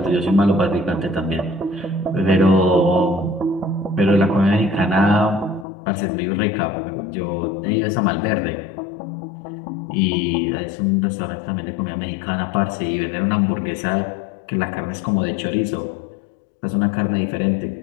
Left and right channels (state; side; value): drops out; right; at 5.7 s